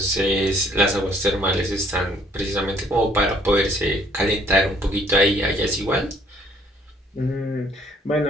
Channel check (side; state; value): both; normal; correlation 0.62